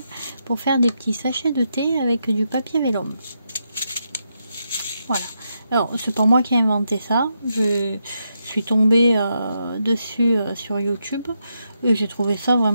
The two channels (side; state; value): both; inverted; correlation -0.83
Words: pour faire des petits sachets de thé avec du papier vélum. Voilà, alors c'est pas moi qui ai inventé ça, je suis tombée dessus sur YouTube et j'ai trouvé ça